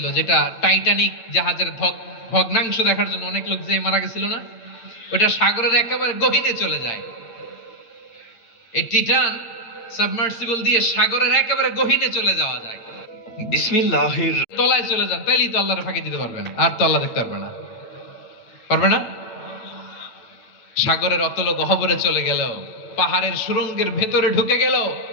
যেটা টাইটানিক জাহাজের ভগ্নাংশ দেখার জন্য অনেক লোক যে মারা গেছিল না, ওটা সাগরের একেবারে গহীনে চলে যায়। এই টিটান সাবমার্সিবল দিয়ে সাগরের একেবারে গহীনে চলে যাওয়া যায়। বিসমিল্লাহির, তলায় চলে যান, তাইলেই তো আল্লাহর ফাঁকি দিতে পারবেন, আর তো আল্লাহ দেখতে পারবে না। পারবে না? সাগরের অতল গহ্বরে চলে গেল, পাহাড়ের সুরঙ্গের ভেতরে ঢুকে গেল,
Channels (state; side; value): late; right; 9.0 ms